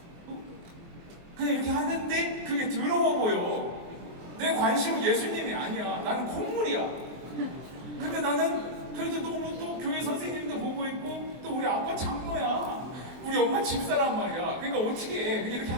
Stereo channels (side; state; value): left; late; 23 ms